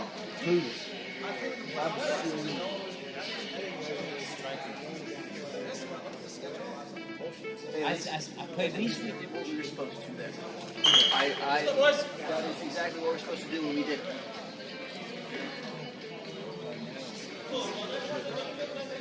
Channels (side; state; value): both; identical; correlation 1.00